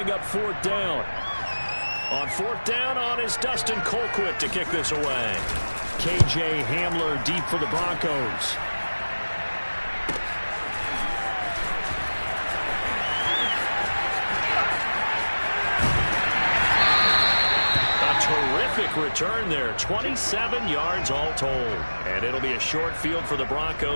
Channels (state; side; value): inverted; both; correlation -1.00